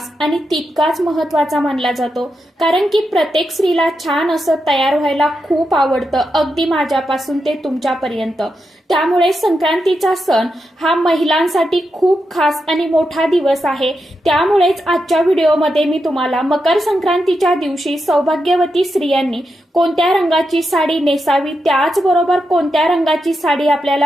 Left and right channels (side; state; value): both; normal; correlation 0.86